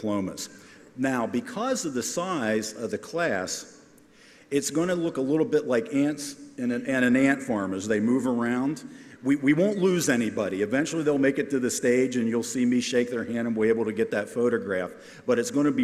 Now, because of the size of the class, it's going to look a little bit like ants in an ant farm as they move around. We won't lose anybody. Eventually they'll make it to the stage and you'll see me shake their hand and we'll be able to get that photograph. But it's going to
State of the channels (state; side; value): identical; both; correlation 1.00